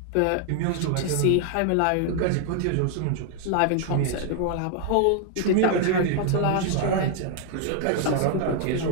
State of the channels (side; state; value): both; different; correlation 0.00